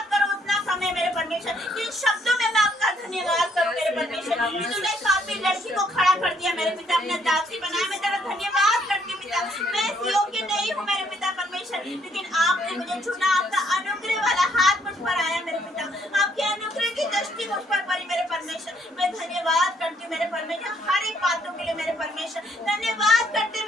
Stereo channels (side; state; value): both; normal; correlation 0.69